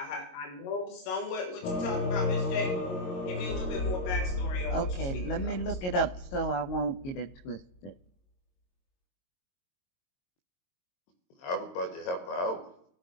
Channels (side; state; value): right; late; 22 ms